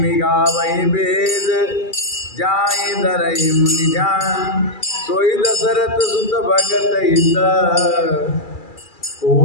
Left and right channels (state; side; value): late; right; 2.4 ms